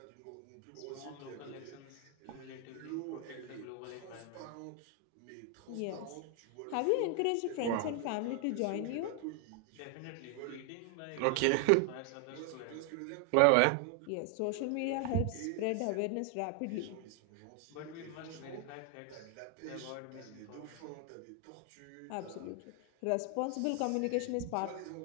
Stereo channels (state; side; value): different; both; correlation 0.00